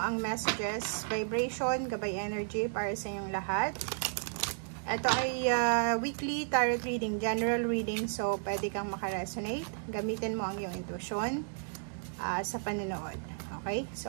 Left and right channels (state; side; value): silent; left; digital silence